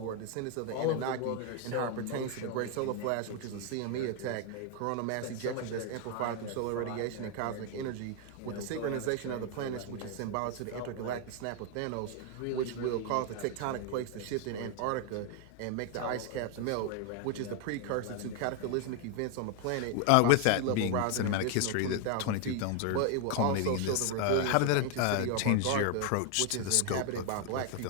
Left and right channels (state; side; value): different; both; correlation 0.01